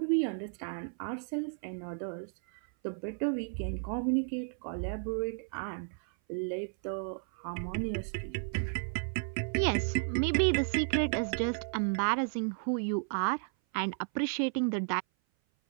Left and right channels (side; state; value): left; silent; 56 dB below the other